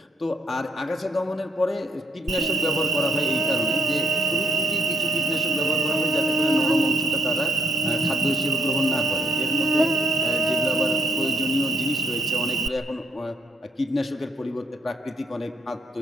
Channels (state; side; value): normal; both; correlation 0.71